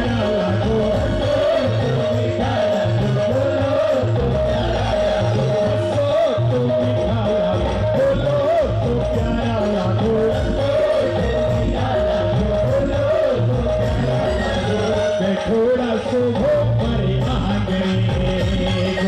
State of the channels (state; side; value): identical; both; correlation 1.00